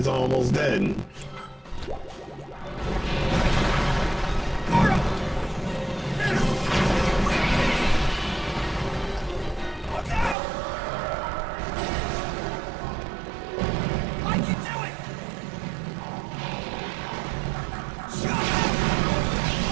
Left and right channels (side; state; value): left; drops out; at 10.4 s